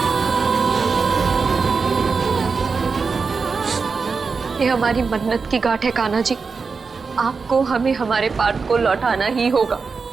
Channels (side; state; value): left; quieter; 4.9 dB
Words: ये हमारी मन्नत की गांठ है कान्हा जी, आपको हमें हमारे पार्थ को लौटाना ही होगा,